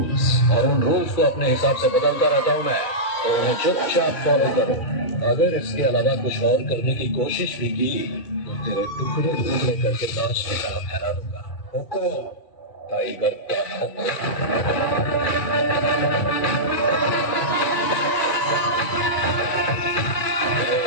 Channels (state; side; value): late; right; 2.3 ms